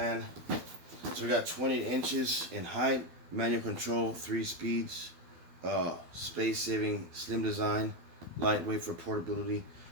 So we got 20 inches in height, manual control, 3 speeds, space-saving, slim design, lightweight for portability.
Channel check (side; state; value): left; late; 12 ms